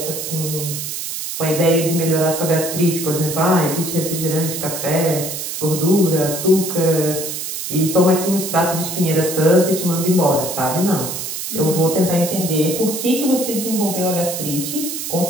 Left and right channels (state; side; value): noise; right; hiss, 5 dB below the sound